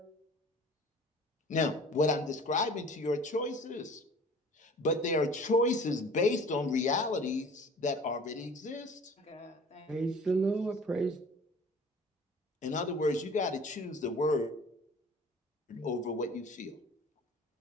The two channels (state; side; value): normal; both; correlation 0.46